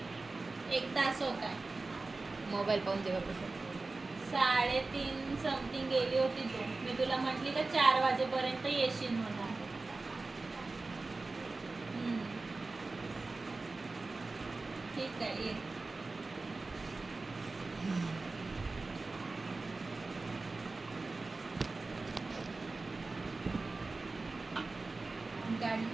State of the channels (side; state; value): left; quieter; 3.5 dB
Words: 1 तास होता. मोबाईल पाहून जेव्हा 3:30 समथिंग गेली होती तू. मी तुला म्हटली का 4 वाजेपर्यंत येशील म्हणून. ठीक आहे, ये. गाडी